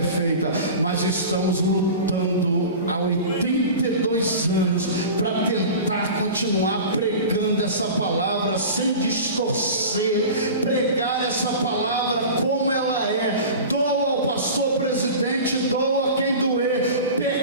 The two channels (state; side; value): inverted; both; correlation -0.34